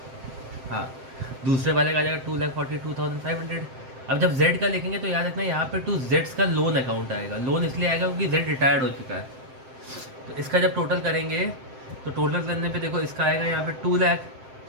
हाँ, दूसरे वाले का आ जाएगा 2,42,500। अब जब Z का लिखेंगे तो याद रखना यहाँ पे टू जेड्स का लोन अकाउंट आएगा। लोन इसलिए आएगा क्योंकि Z रिटायर्ड हो चुका है। तो इसका जब टोटल करेंगे तो टोटल करने पे देखो इसका आएगा यहाँ पे 2 लाख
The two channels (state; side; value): late; left; 7.7 ms